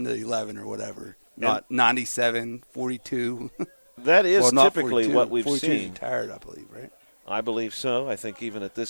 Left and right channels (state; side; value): inverted; both; correlation -1.00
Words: to 11 or whatever. Not 97, 42. That is well, not typically 42. what we've 42 seen. Retired, I believe, right? I believe so. I think even at